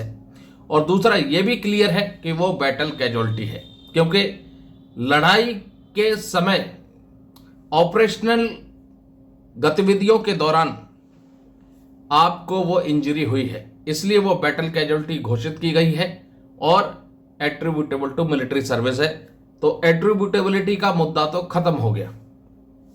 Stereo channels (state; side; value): identical; both; correlation 1.00